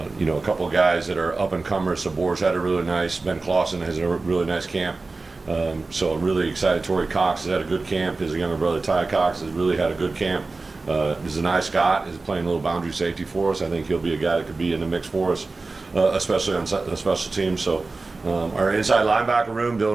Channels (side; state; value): left; quieter; 3.6 dB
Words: you know, a couple of guys that are up and comers. Sabor's had a really nice, Ben Clausen has a really nice camp. So really excited. Torrey Cox has had a good camp. His younger brother Ty Cox has really had a good camp. Zanai Scott is playing a little boundary safety for us. I think he'll be a guy that could be in the mix for us, especially on the special teams. So our inside linebacker room,